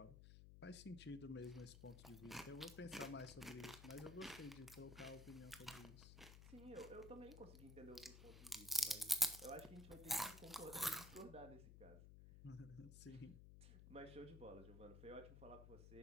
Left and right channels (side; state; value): left; noise; hum, 12 dB below the sound